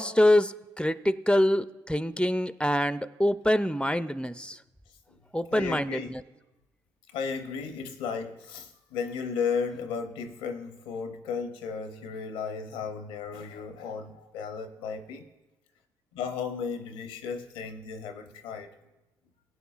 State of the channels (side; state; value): both; normal; correlation 0.86